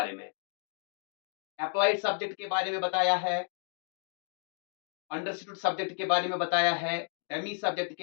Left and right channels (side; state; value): right; silent; 56 dB below the other